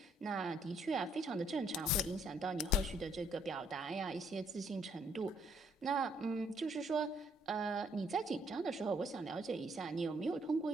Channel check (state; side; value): normal; both; correlation 0.68